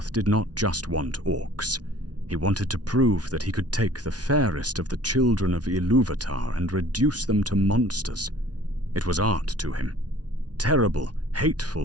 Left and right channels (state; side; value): late; left; 0.69 ms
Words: did not just want orcs. He wanted to prove that he could take the fairest of the children of Ilúvatar and reduce them to monsters. It was art to him. Terrible,